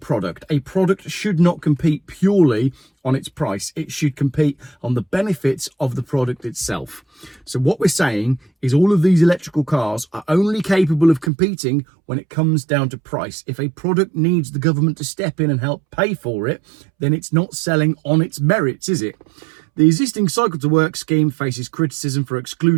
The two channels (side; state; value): left; drops out; at 11.3 s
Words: A product should not compete purely on its price. It should compete on the benefits of the product itself. So what we're saying is all of these electrical cars are only capable of competing when it comes down to price. If a product needs the government to step in and help pay for it, then it's not selling on its merits, is it? The existing Cycle to Work scheme faces criticism for